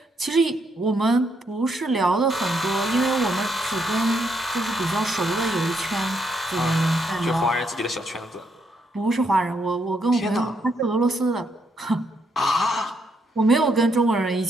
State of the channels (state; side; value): normal; both; correlation 0.76